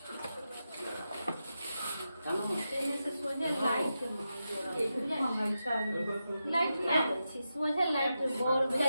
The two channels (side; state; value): both; inverted; correlation -0.89